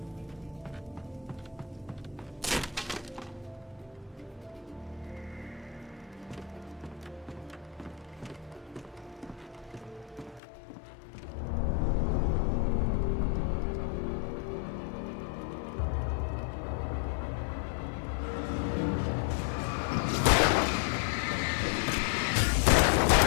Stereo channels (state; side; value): drops out; right; at 10.4 s